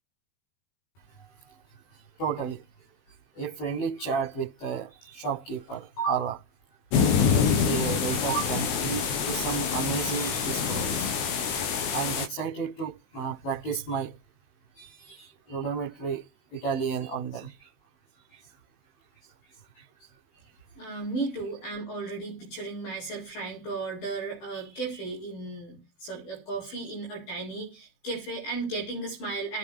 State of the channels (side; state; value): right; late; 18 ms